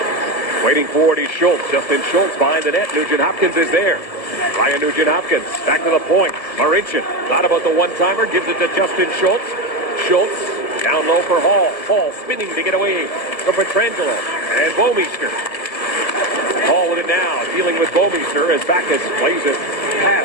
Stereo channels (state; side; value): late; right; 1.7 ms